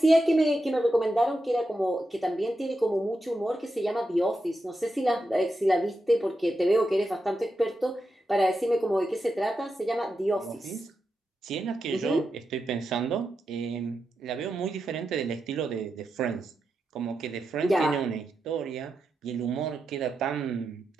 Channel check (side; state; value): both; normal; correlation 0.87